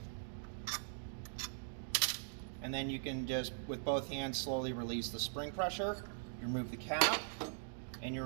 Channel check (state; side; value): silent; left; digital silence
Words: and then you can just, with both hands, slowly release the spring pressure. You remove the cap, and you